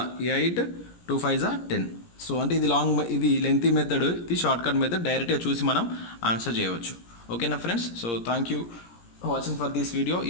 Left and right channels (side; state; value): right; late; 17 ms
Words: 8, 2 5 10. సో అంటే ఇది లెంతీ మెథడ్, ఇది షార్ట్ కట్ మెథడ్. డైరెక్ట్గా చూసి మనం ఆన్సర్ చేయవచ్చు. ఓకేనా friends. So thank you watching for this video.